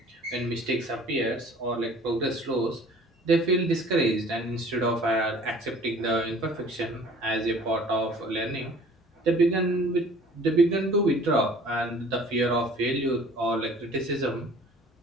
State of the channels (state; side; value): normal; both; correlation 0.50